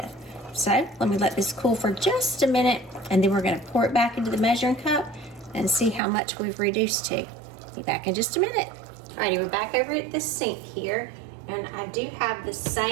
So let me let this cool for just a minute, and then we're going to pour it back into the measuring cup and see how much we've reduced to. Be back in just a minute. Alrighty, we're back over at the sink here, and I do have the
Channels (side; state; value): left; drops out; at 6.0 s